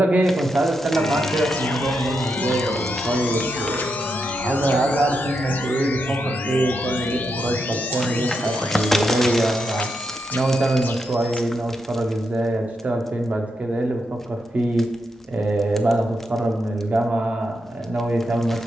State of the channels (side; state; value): both; normal; correlation 0.83